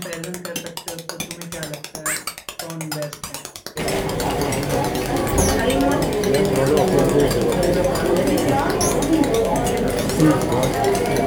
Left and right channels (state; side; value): identical; both; correlation 1.00